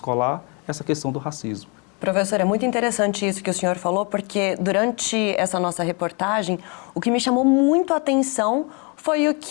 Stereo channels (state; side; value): quieter; right; 32.7 dB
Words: essa questão do racismo. Professor, é muito interessante isso que o senhor falou, porque durante essa nossa reportagem, o que me chamou muito a atenção foi o